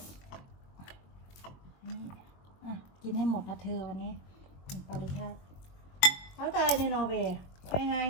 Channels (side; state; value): right; late; 22 ms